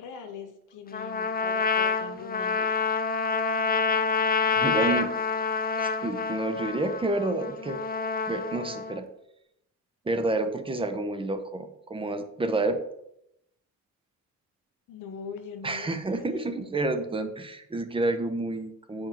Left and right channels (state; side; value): normal; both; correlation 0.11